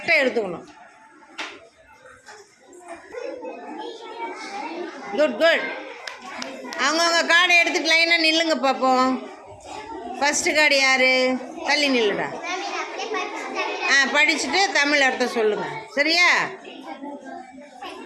எடுத்துக்கணும். குட். அவங்கவுங்க கார்டை எடுத்துட்டு லைனாக நில்லுங்க பார்ப்போம். ஃபஸ்ட்டு கார்டு யார்? தள்ளி நில்லுடா. படிச்சுட்டு தமிழ் அர்த்தம் சொல்லுங்கள், சரியா?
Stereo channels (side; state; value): both; identical; correlation 1.00